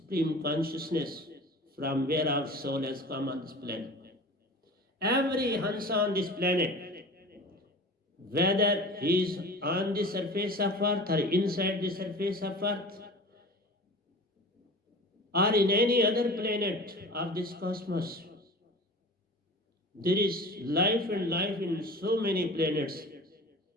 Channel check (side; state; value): both; normal; correlation 0.38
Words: Consciousness from where our soul has come on this planet. Every Hansa on this planet, whether he is on the surface of earth or inside the surface of earth or in any other planet of this cosmos, there is life and life in so many planets